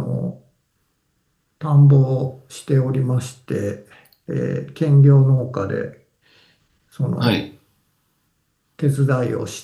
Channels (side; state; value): both; identical; correlation 1.00